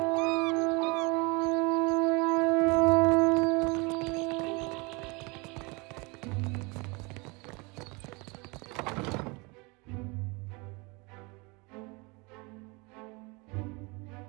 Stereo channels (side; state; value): left; quieter; 27.8 dB